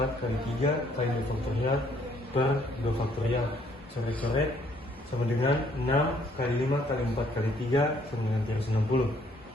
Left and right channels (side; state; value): both; normal; correlation 0.65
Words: kali 3 kali 2 faktorial per 2 faktorial. Coret-coret sama dengan 6 kali 5 kali 4 kali 3 sama dengan 360.